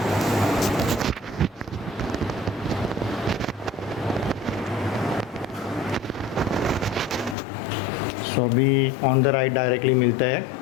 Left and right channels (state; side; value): drops out; right; at 7.4 s